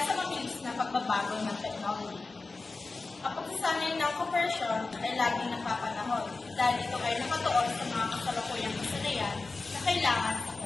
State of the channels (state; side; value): quieter; right; 3.7 dB